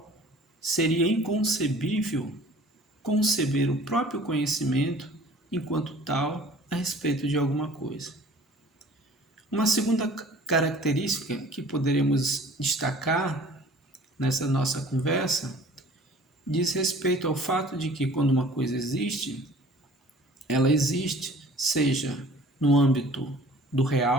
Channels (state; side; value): normal; both; correlation 0.49